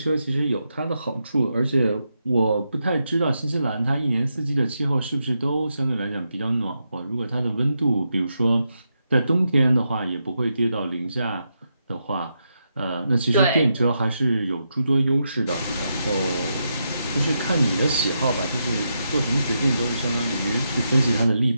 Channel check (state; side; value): inverted; both; correlation -0.84